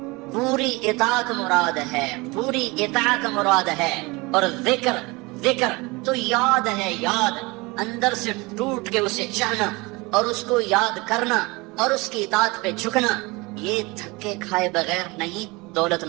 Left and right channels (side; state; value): left; quieter; 24.6 dB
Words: پوری اطاعت مراد ہے, پوری اطاعت مراد ہے. اور ذکر ذکر تو یاد ہے, یاد اندر سے ٹوٹ کے اسے چاہنا اور اس کو یاد کرنا اور اس کی اطاعت پہ جھکنا. یہ دھکے کھائے بغیر نہیں دولت